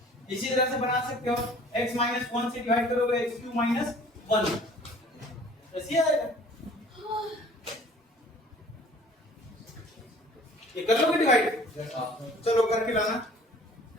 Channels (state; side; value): normal; both; correlation 0.51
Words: इसी तरह से बना सकते हो, x माइनस 1 से डिवाइड करोगे x क्यूब माइनस 1, ऐसे आएगा। ये कर लोगे डिवाइड, चलो करके लाना,